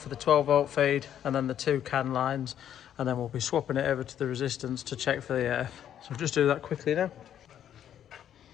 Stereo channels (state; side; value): quieter; right; 10.1 dB